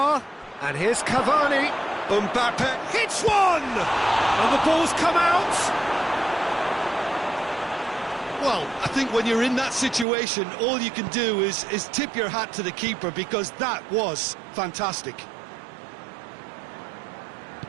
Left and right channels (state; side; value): drops out; left; at 10.1 s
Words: And here's Cavani. Mbappe hits one! And the ball's come out. Well, I think when you're in that situation, all you can do is tip your hat to the keeper, because that was fantastic.